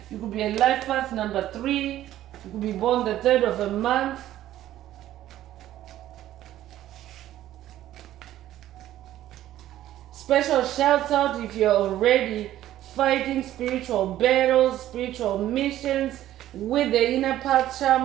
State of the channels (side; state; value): left; quieter; 13.2 dB